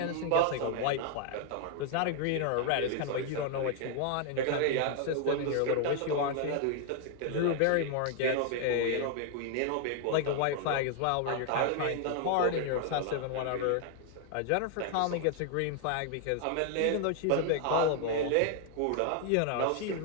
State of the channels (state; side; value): different; both; correlation 0.00